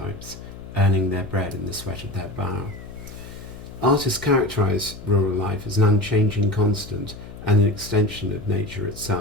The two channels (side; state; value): left; noise; hum, 14 dB below the sound